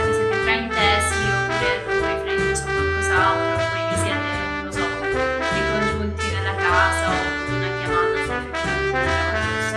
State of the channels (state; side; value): identical; both; correlation 1.00